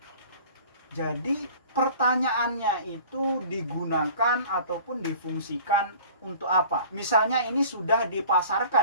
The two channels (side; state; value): both; inverted; correlation -0.46